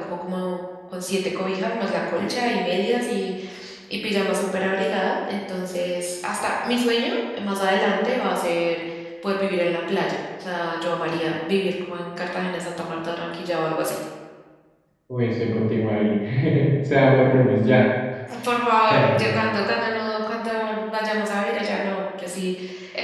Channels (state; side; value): identical; both; correlation 1.00